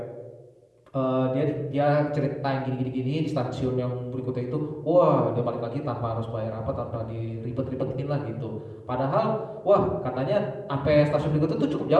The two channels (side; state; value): both; identical; correlation 1.00